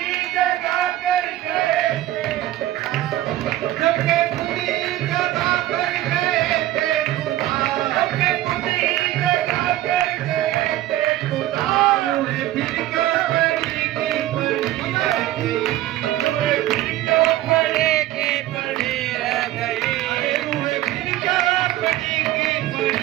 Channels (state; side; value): quieter; left; 14.8 dB